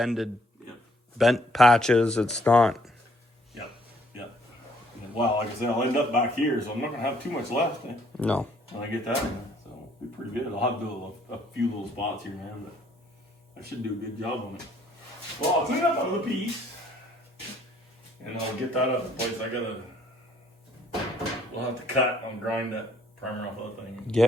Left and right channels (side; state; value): both; normal; correlation 0.64